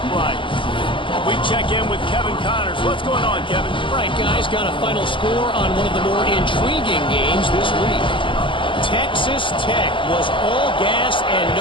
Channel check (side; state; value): right; late; 0.25 ms